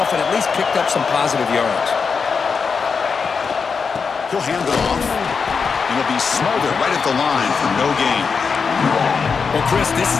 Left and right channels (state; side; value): quieter; right; 5.5 dB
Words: off and at least picked up some positive yards. He'll hand it off, and he'll be smothered right at the line for no gain. Well, Chris, this